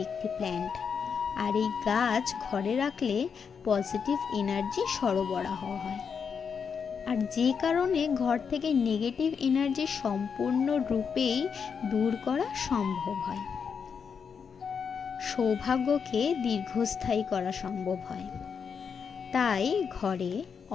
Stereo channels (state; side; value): quieter; right; 6.4 dB